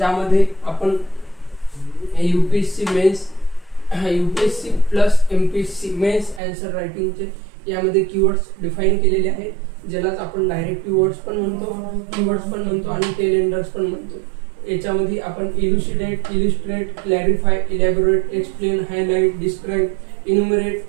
आपण UPSC mains, UPSC plus MPSC mains answer रायटिंगचे यामध्ये कीवर्ड्स डिफाइन केलेले आहेत, ज्यालाच आपण डायरेक्टिव्ह वर्ड्स पण म्हणतो, कीवर्ड्स पण म्हणतो आणि टेलेंडर्स पण म्हणतो. याच्यामध्ये आपण illustrate, clarify, elaborate, explain, highlight, describe,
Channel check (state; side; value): drops out; left; at 6.4 s